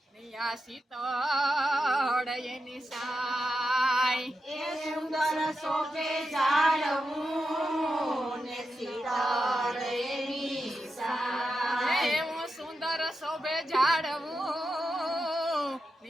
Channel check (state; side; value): normal; both; correlation 0.88